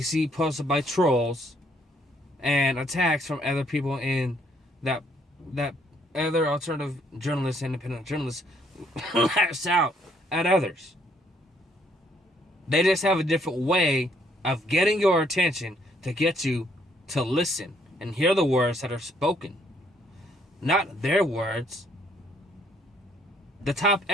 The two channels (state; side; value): normal; both; correlation 0.68